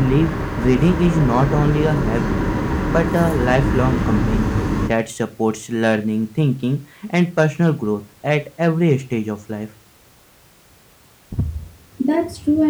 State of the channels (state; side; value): identical; both; correlation 1.00